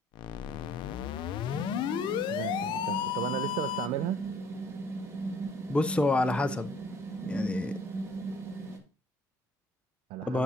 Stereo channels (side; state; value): both; normal; correlation 0.58